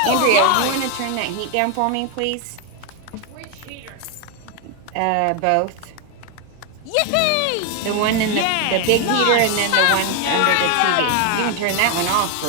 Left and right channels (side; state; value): both; different; correlation 0.01